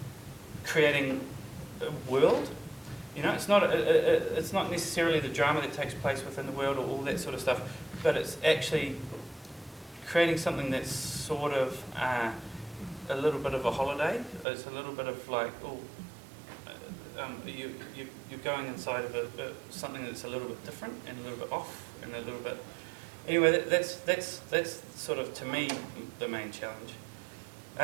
creating a world. You know, it's not necessarily the drama that takes place within the world or all that sort of stuff, but it's actually creating something that's sort of a little bit of a holiday. It's a little bit of like, you're going inside of something that's a little bit different and a little bit off and a little bit. Anyway, that's sort of, to me, the main challenge.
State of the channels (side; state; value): left; drops out; at 14.5 s